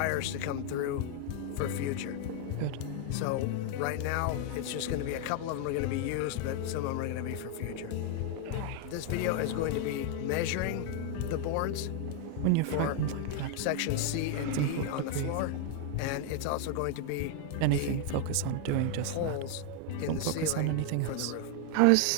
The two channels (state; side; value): different; both; correlation 0.00